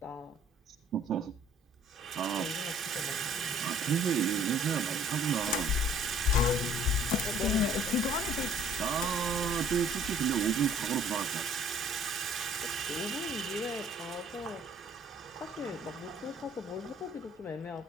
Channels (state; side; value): normal; both; correlation 0.56